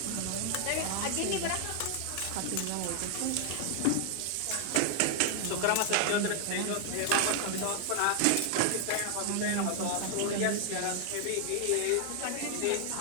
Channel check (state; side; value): different; both; correlation 0.00